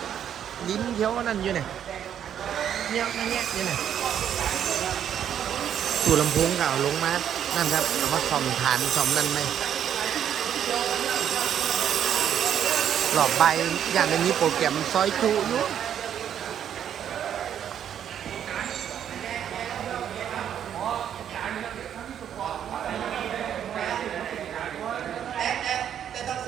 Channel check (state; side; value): quieter; left; 9.4 dB